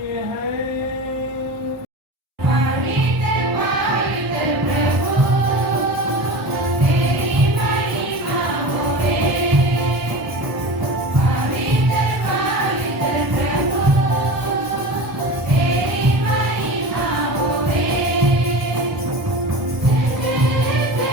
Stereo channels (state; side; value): late; left; 1.3 ms